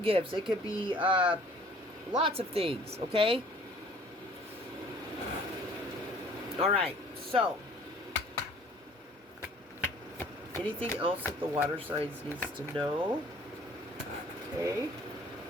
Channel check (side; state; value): both; normal; correlation 0.53